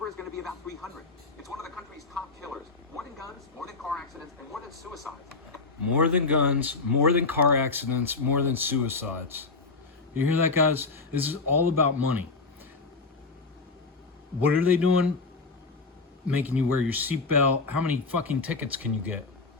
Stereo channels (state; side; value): quieter; right; 4.1 dB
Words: is going to be about 300. It's one of the country's top killers. More than guns, more than car accidents, and more than suicides. More than guns, more than car accidents, more than suicides. You hear that, guys? This is all about money. What are they doing? Making you wear your seatbelt. How many fucking tickets can you get?